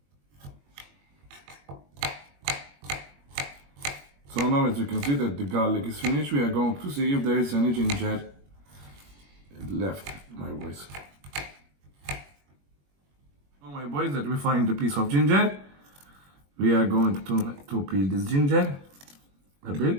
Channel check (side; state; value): left; late; 21 ms